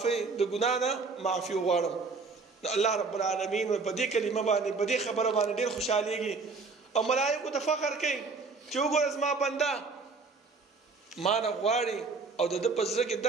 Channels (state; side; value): quieter; left; 4.3 dB